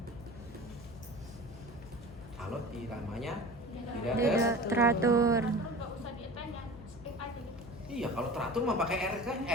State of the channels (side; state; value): left; noise; hum, 18 dB below the sound